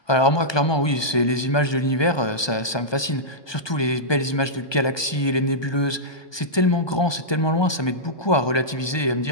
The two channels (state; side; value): late; right; 1.2 ms